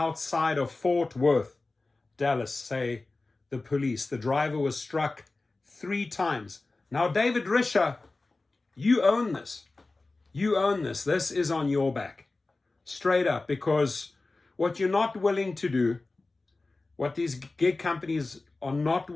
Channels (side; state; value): right; quieter; 3.3 dB